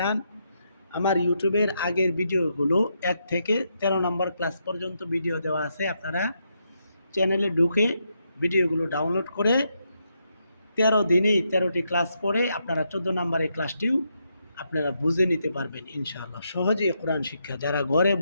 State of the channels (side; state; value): both; inverted; correlation -0.80